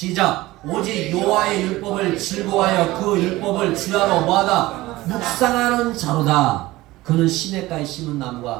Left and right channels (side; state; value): left; quieter; 18.4 dB